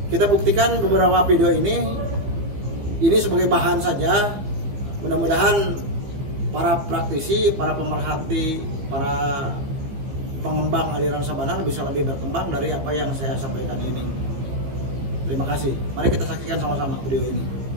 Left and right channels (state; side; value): late; left; 15 ms